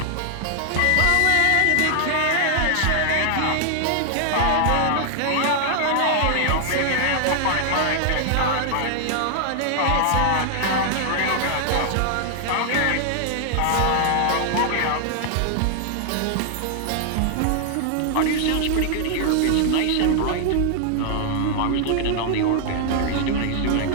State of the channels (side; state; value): both; different; correlation 0.00